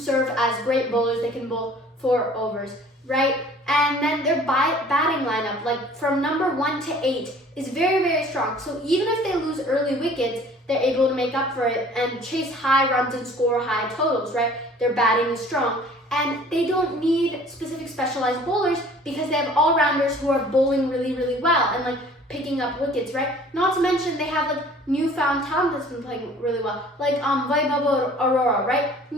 as great bowlers. They can bowl 4 overs, right? And then their batting lineup, like from number 1 to 8, is very, very strong. So even if they lose early wickets, they're able to make up for it and chase high runs and score high totals, right? Their batting is strong. And they don't need specific specialized bowlers because they have all-rounders who are bowling really, really well and like picking up wickets, right? Not to mention they have like newfound talent that's been playing really well, like Vaibhav Arora, right?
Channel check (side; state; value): both; normal; correlation 0.51